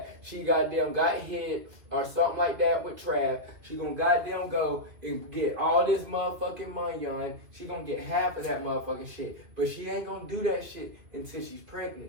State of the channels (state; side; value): late; left; 2.5 ms